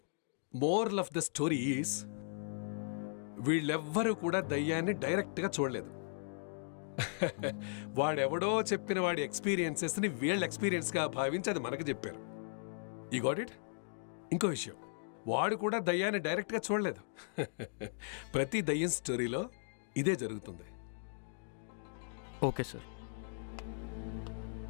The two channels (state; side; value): silent; right; digital silence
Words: moral of the story is, వీళ్ళెవ్వరూ కూడా దయ్యాన్ని డైరెక్ట్గా చూడలేదు. వాడెవడో చెప్పిన వాడి ఎక్స్పీరియన్సెస్ని వీళ్ళ ఎక్స్పీరియన్స్గా భావించి అది మనకు చెప్పారు. ఈ గాట్ ఇట్. ఇంకో విషయం, వాడు కూడా దయ్యాన్ని డైరెక్ట్గా చూడలేదు. ప్రతి దయ్యం స్టోరీలో ఇదే జరుగుతుంది. Okay sir.